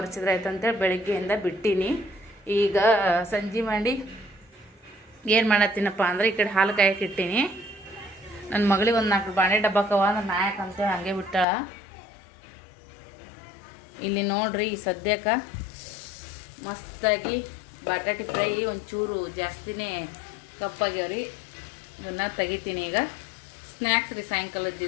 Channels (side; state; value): right; drops out; at 11.5 s